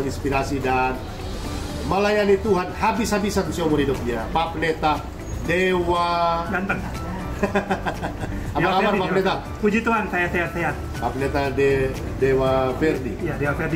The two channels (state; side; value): identical; both; correlation 1.00